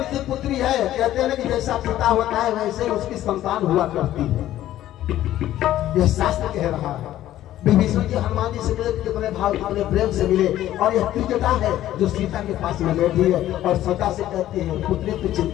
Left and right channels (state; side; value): quieter; right; 13.3 dB